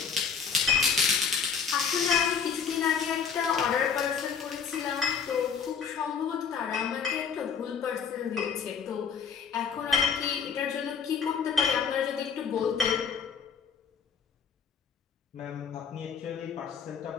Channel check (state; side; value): quieter; right; 6.5 dB